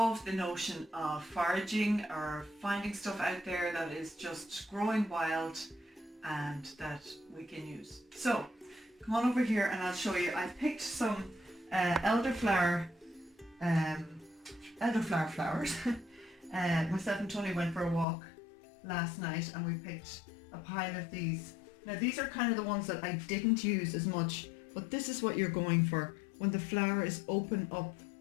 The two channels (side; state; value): right; drops out; at 18.1 s